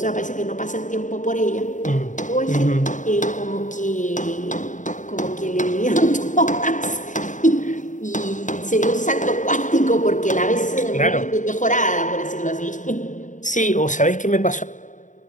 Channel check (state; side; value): late; right; 0.36 ms